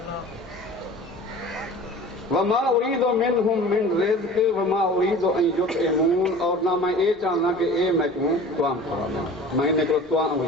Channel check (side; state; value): both; normal; correlation 0.41